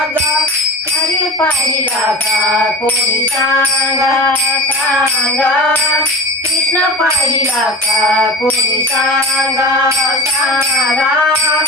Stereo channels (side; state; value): both; normal; correlation 0.33